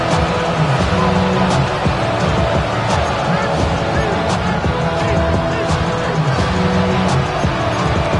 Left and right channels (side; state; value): both; identical; correlation 1.00